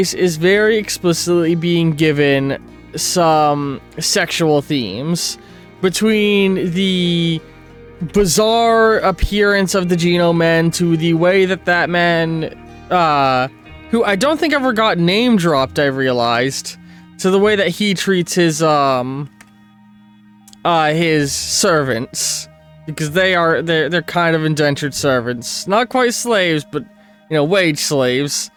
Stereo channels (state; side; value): identical; both; correlation 1.00